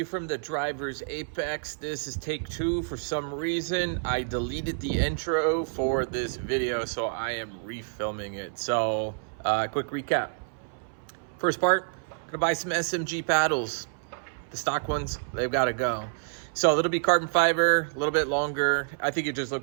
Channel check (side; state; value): left; silent; 59 dB below the other